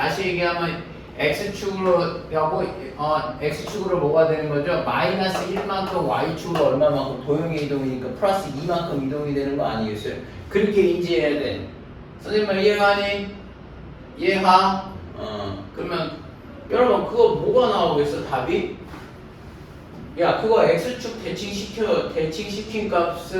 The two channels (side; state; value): both; identical; correlation 1.00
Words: 얘기하면 x축으로 하고 x축으로 뭐가 되는 거죠? 마이너스 1만큼 y축으로 얼마만큼 도형의 이동이니까 플러스 2만큼 이동이 되는 거 아니겠어요? 그렇게 인지해야 돼. 선생님 말 이해가니? 이해가? 그러면 여러분 그거 뭐가 나오겠어? 답이? 야 그거 x축 대칭시킨